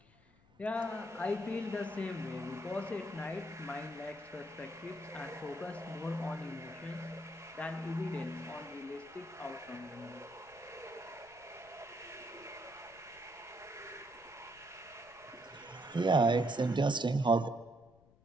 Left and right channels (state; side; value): noise; left; rumble, 27 dB below the sound